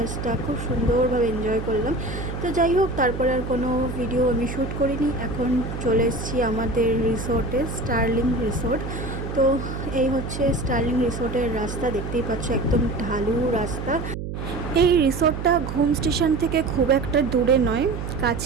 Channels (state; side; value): noise; right; hum, 6 dB below the sound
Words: খুব সুন্দরভাবে এনজয় করলাম। তো যাই হোক, তারপরে আর কোনো ভিডিও আমি শ্যুট করিনি। এখন চলে এসেছি আমাদের রিসোর্টে, স্টার্লিং রিসোর্ট। তো এই হচ্ছে স্টার্লিং রিসোর্টের রাস্তা, দেখতেই পাচ্ছ একদম ঢালু রাস্তা। এই রিসোর্টটা ঘুম স্টেশন থেকে খুব একটা দূরে নয়,